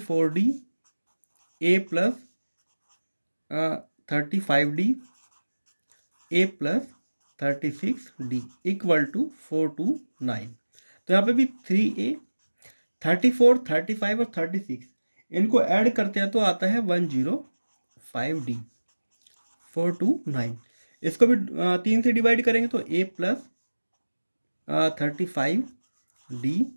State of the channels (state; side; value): inverted; both; correlation -1.00